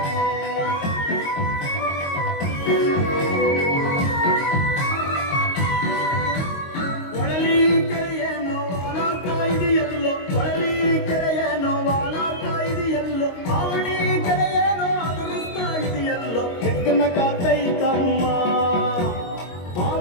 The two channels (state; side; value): late; right; 22 ms